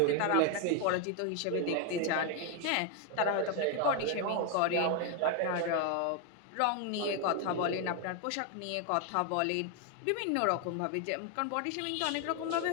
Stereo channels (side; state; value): both; different; correlation 0.01